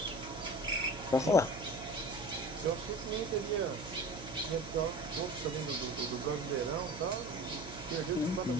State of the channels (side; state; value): right; noise; hum, 12 dB below the sound